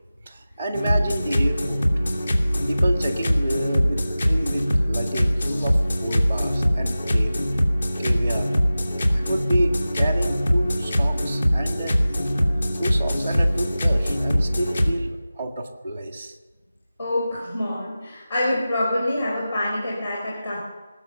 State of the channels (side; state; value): both; inverted; correlation -0.96